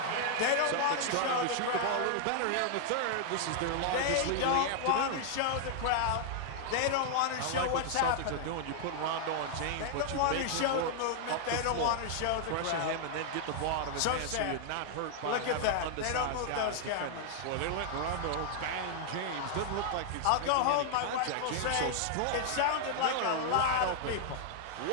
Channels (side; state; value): both; different; correlation -0.01